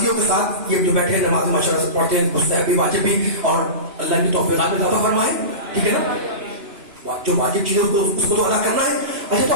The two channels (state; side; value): late; left; 2.9 ms